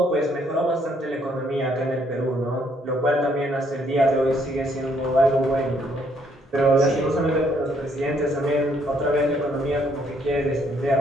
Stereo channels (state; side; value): normal; both; correlation 0.68